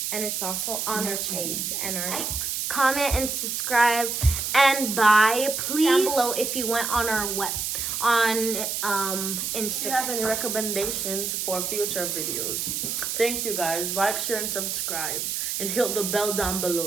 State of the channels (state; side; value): noise; right; hiss, 2 dB below the sound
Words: And it's also on our page and our comment and subscribe and buy. Please down below if you went on our If you Instagram. have any recommendations for future videos, thank you guys. Like, share, and subscribe, and hit the bell down